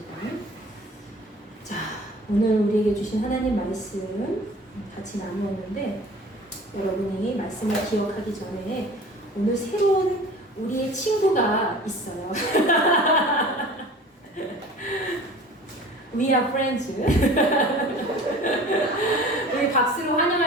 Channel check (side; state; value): both; normal; correlation 0.43